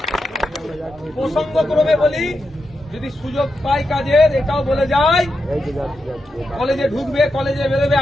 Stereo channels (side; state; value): both; normal; correlation 0.87